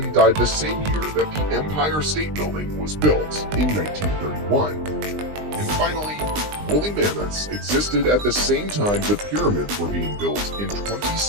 died the same year that the Empire State Building was built in 1931. And finally, woolly mammoths existed at the same time the pyramids were being built in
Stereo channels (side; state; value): left; late; 20 ms